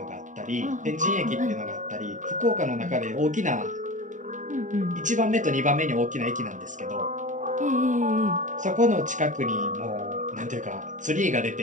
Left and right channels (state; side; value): late; left; 0.36 ms